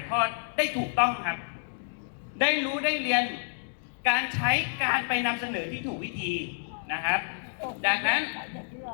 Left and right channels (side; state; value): right; silent; digital silence